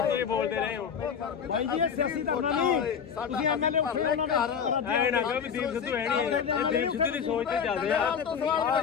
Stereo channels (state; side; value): quieter; right; 7.2 dB